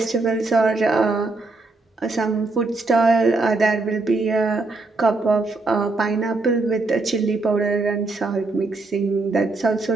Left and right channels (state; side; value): quieter; left; 3.4 dB